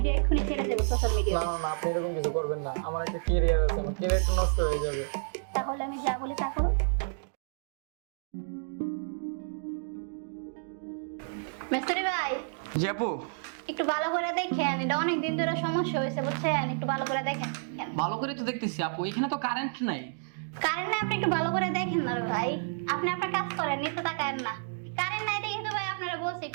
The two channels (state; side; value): silent; left; digital silence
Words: এক্ষুনি ছেড়ে দেবো সোশ্যাল মিডিয়া। না না না, আপনি এরকম কিছু করবেন না। আমার একটা ক্যারিয়ার আছে, আমার ক্যারিয়ারটা নষ্ট হয়ে যাবে। তাহলে আমি যা বলি তা করো। মিস্ত্রি ভাই, জি আপু। একটু ভালো করে দেখেন, এটা অনেক দিন ধরে সমস্যা হয়েছে বুঝছেন, একটু ভালো করে দেখেন। ভালো করে তো দেখতেছি আপু, এখানে তো কারেন্ট নাই। কারেন্ট নাই, আপনি একটু ভালো করে দেখেন না রে ভাই। আপনি আপনার কাজ করেন, নিতে তাকায়েন না। কারেন্ট নাই দেখে তো ভাই আপনারা বলছি